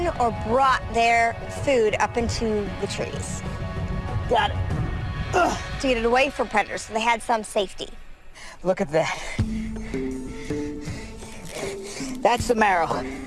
or brought their food up into the trees Got it. to get it away from predators, so they had some safety. Look at that. That's the marrow.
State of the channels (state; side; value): identical; both; correlation 1.00